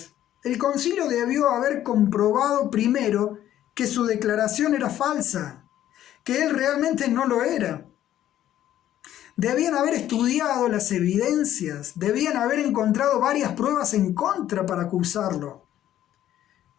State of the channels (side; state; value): right; quieter; 12.2 dB